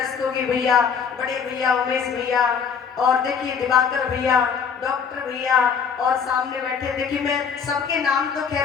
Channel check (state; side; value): quieter; right; 6.6 dB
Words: भैया, बड़े भैया उमेश भैया, और देखिए दिवाकर भैया, डॉक्टर भैया, और सामने बैठे, देखिए मैं सबके नाम तो